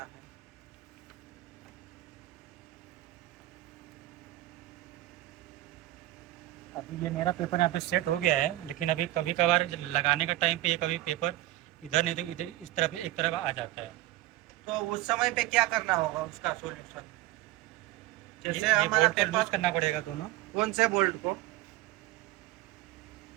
है। अभी ये मेरा पेपर यहाँ पे सेट हो गया है, लेकिन अभी कभी कभार लगाने का टाइम पे ये कभी पेपर इधर नहीं तो इधर इस तरफ एक तरफ आ जाता है। तो उस समय पे क्या करना होगा उसका सॉल्यूशन? जैसे ये हमारा बोल्ट को लूज पेपर, करना पड़ेगा दोनों। कौन से बोल्ट को?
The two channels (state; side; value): quieter; left; 16.3 dB